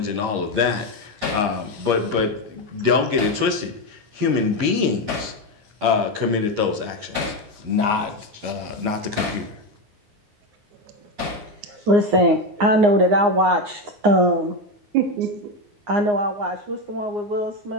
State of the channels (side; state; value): left; late; 9.7 ms